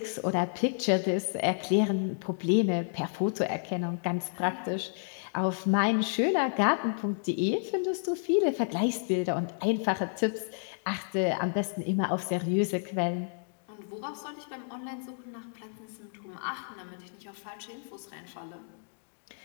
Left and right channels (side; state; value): right; silent; digital silence